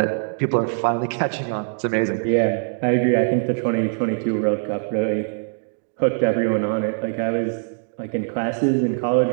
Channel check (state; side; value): silent; left; digital silence